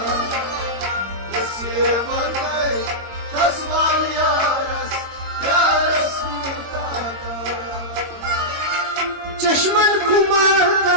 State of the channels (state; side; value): late; left; 22 ms